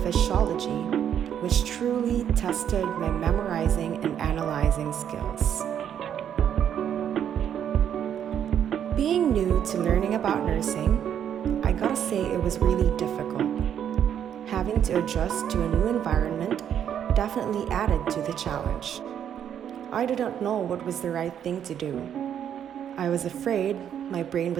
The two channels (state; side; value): quieter; left; 9.3 dB